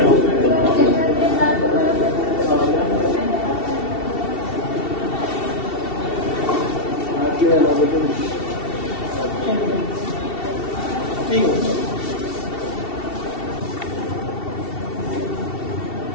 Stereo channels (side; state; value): right; late; 2.7 ms